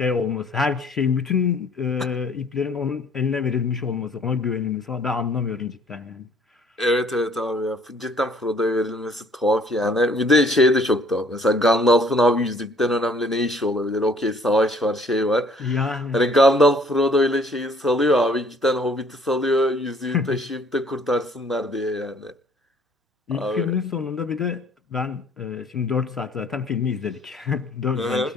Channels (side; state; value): both; normal; correlation 0.59